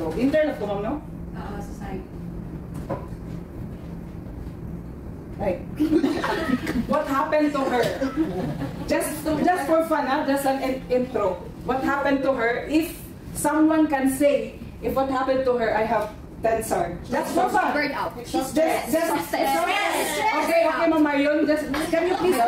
Internet ko, ma'am, no? Society. Like, what happened to her? Just for fun, just an intro. What happened to her? If someone can say, if what happened to her, I have 10 stars. That's for fun. Burn out. Just okay, Ma'am Marion, can you please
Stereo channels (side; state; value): both; identical; correlation 1.00